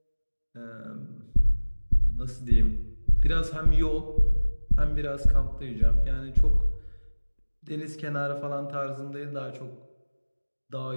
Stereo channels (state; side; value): inverted; both; correlation -1.00